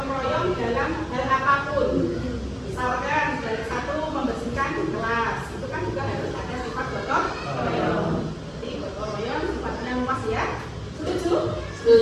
royong dalam hal apapun. Misalkan dari satu membersihkan kelas, itu kan juga harus ada sifat gotong royong. Jadi gotong royong sifatnya luas ya. Setuju?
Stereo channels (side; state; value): both; identical; correlation 1.00